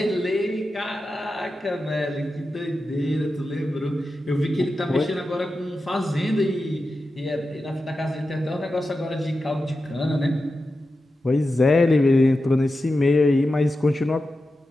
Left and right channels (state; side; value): normal; both; correlation 0.91